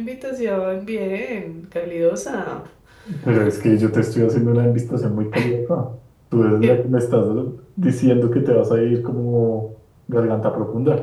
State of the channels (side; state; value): both; identical; correlation 1.00